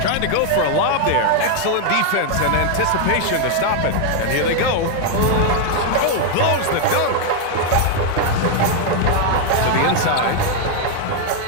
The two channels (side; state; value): both; different; correlation 0.00